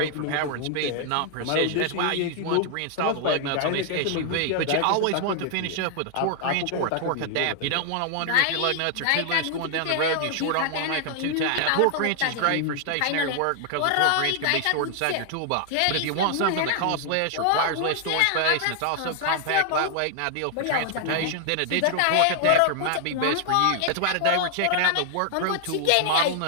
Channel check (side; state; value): both; different; correlation 0.00